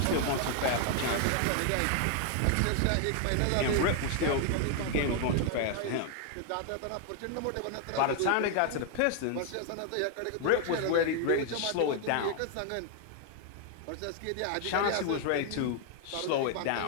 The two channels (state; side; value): different; both; correlation 0.00